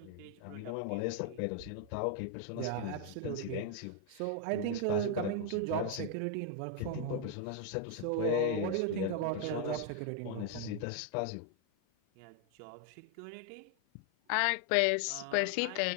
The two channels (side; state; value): both; different; correlation 0.00